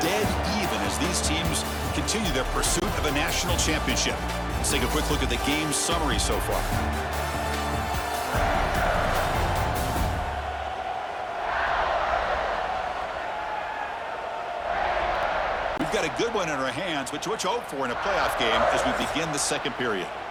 even as these teams continue their pursuit of a national championship. Let's take a quick look at the game summary so far. We've got a good one in our hands, which what you hope for in a playoff game as we begin the second period.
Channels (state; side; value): identical; both; correlation 1.00